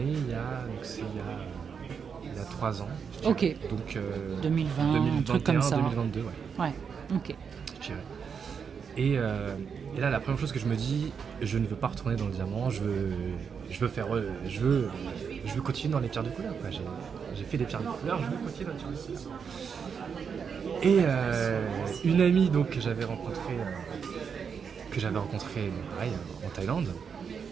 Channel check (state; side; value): quieter; left; 6.5 dB